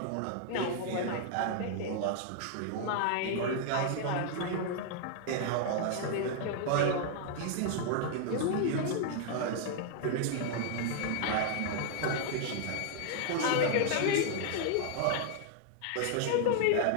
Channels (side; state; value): both; different; correlation 0.00